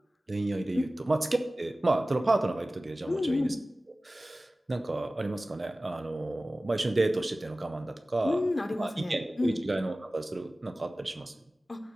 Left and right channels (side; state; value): both; normal; correlation 0.97